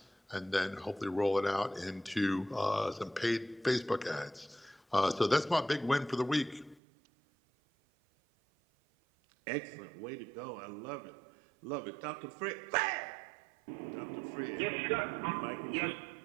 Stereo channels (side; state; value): left; drops out; at 6.8 s